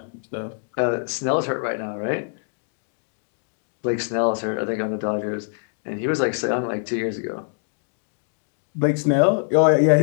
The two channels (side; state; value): right; silent; digital silence